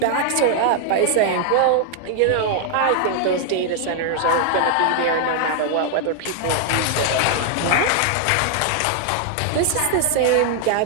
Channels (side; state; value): both; different; correlation 0.00